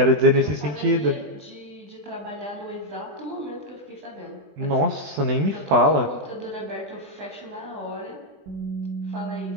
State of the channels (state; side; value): late; left; 20 ms